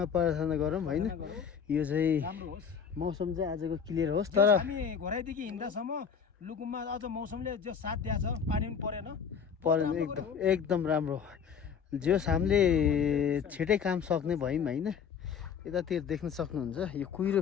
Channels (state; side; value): quieter; right; 7.0 dB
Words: प्रार्थना गरौँ होइन यो चाहिँ राम्रो होस् मौसम चाहिँ आजको क्लियर होस् तर तर हामी घोराइदेखि हिँड्दासम्म लुकुममा अझ मौसमले जो साथ दिएको छ पानी पनि परेन परेन एकदम राम्रो जस हामीले छिटै काम सक्ने भयौँ होइन यतातिर देख्न सक्नुहुन्छ यो कुहिरो